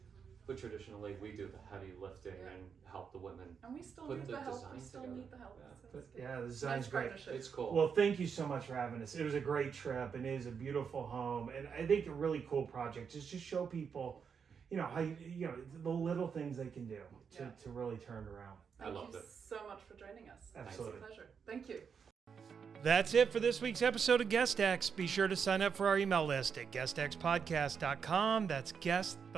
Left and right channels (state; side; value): quieter; left; 6.5 dB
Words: but traditionally we do the heavy lifting and help the women. And we still Put need the the help. design We still together. need the help. Yeah. So it's good. Yeah, the design's Nice great. partnership. It's cool. Well, thank you so much for having us. It was a great trip, and it is a beautiful home, and I think a really cool project is just show people, how the little things they can do to really turn around. I loved Thank it. you so much for joining us. Absolutely. It's a pleasure. Thank you. That's it for this week's episode of GuestX. Be sure to sign up for our email list at guestxpodcast.com. That's guest,